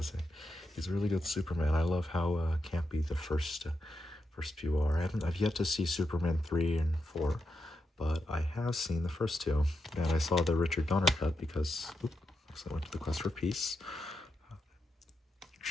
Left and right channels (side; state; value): both; normal; correlation 0.86